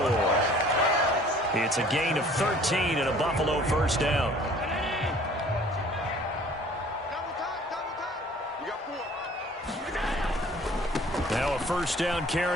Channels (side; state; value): both; normal; correlation 0.52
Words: It's a gain of 13 and a Buffalo first down. Now a first down